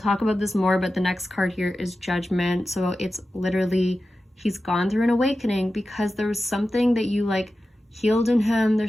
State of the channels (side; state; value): both; normal; correlation 0.93